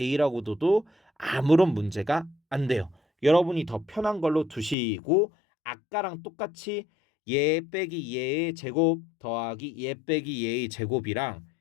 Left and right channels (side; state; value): right; drops out; at 4.8 s